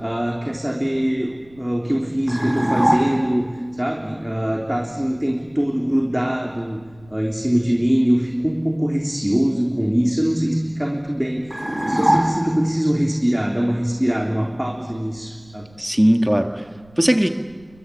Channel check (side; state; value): right; noise; rumble, 28 dB below the sound